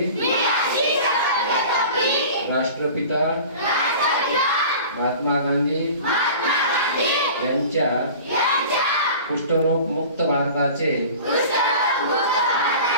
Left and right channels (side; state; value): both; inverted; correlation -0.40